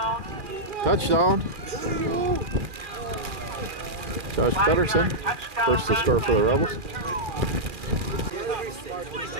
Touchdown. Josh Pedersen, first to score for the Rebels.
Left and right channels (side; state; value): left; late; 2.4 ms